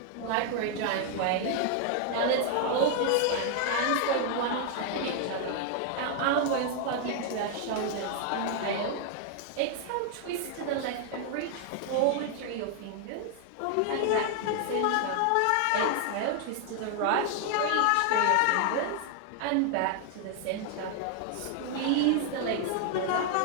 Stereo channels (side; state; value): both; different; correlation 0.00